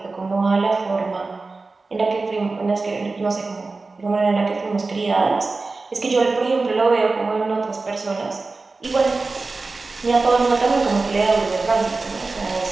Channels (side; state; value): left; quieter; 3.7 dB